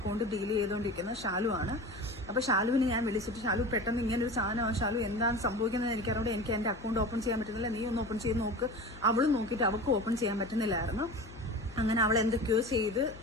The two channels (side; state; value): left; noise; hum, 19 dB below the sound